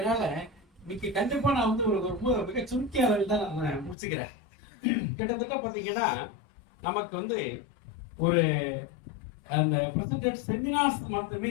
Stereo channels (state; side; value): drops out; right; at 4.0 s